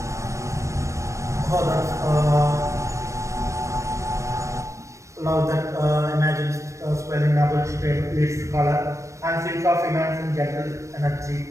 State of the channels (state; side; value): late; left; 0.15 ms